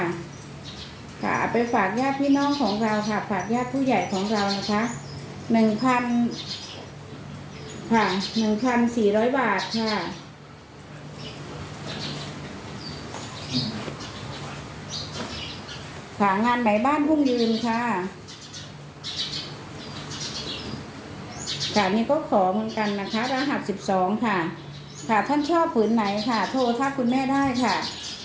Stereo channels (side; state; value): both; identical; correlation 1.00